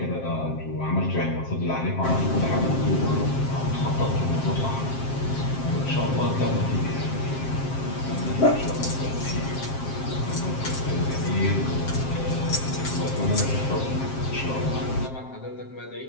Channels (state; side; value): late; right; 7.5 ms